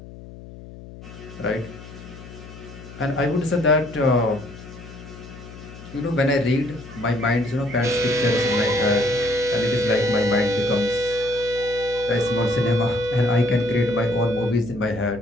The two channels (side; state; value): left; noise; hum, 16 dB below the sound